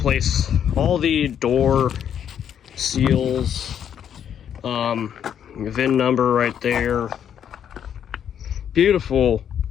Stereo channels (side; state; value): right; quieter; 9.0 dB